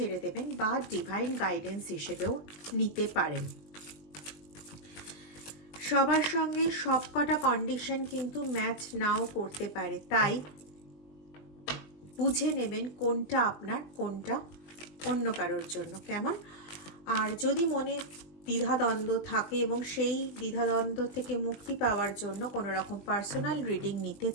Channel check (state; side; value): late; right; 20 ms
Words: দেবেন বা ডিভাইন গাইডেন্স হিসেবেও নিতে পারেন। সবার সঙ্গে সব কটা কন্ডিশন কিন্তু ম্যাচ নাও করতে পারে, তাই বুঝে নেবেন কোনটা আপনার, কোনটা অন্য কারোর জন্য। কেমন? আর যদি মনে দ্বিধাদ্বন্দ্ব থাকে এবং সেই দ্বিধাদ্বন্দ্ব থেকে মুক্তি পাওয়ার জন্য কোনো রকম পার্সোনাল রিডিং নিতে